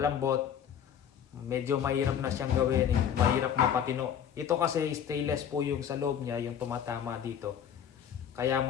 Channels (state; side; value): quieter; right; 8.8 dB